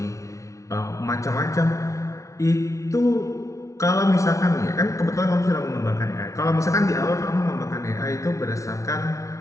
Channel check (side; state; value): right; late; 0.15 ms